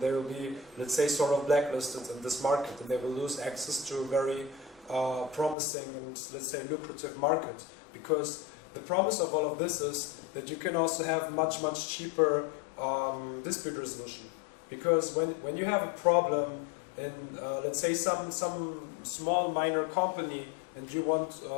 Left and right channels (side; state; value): right; drops out; at 5.6 s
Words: will be, let's say, sort of blacklisted in this market, and they will lose access to a very promising and, let's say, lucrative market. Because the promise of all of this is that you can also have much cheaper dispute resolution. Because when you have a problem in, let's say, some small minor company, and you want